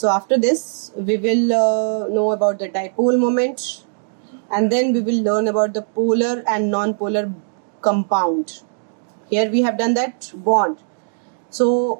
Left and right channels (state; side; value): silent; left; digital silence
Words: after this we will know about the dipole moment, and then we will learn about the polar and non-polar compound. Here we have done that bond.